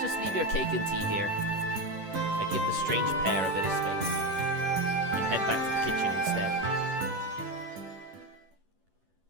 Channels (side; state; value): left; late; 11 ms